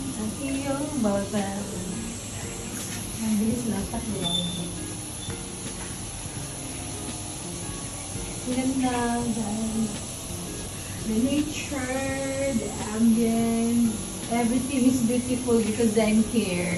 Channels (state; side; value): identical; both; correlation 1.00